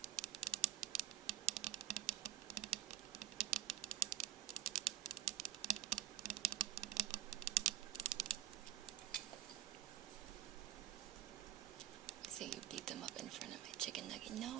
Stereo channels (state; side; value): quieter; left; 12.3 dB